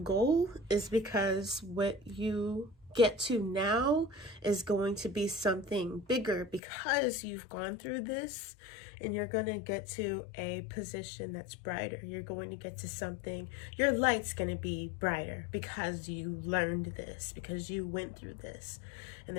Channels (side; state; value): right; drops out; at 6.6 s